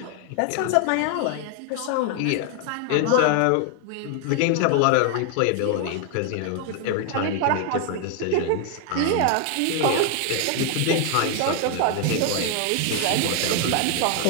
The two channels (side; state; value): both; different; correlation 0.00